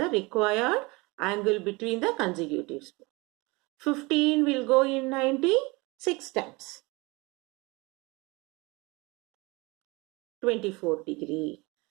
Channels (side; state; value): left; quieter; 25.2 dB